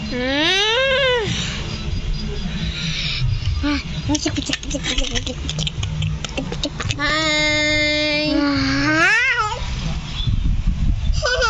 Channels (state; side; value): identical; both; correlation 1.00